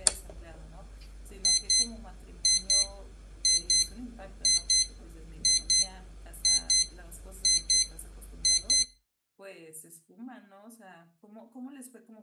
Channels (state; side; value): identical; both; correlation 1.00